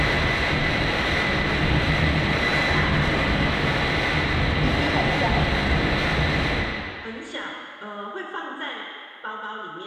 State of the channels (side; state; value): both; identical; correlation 1.00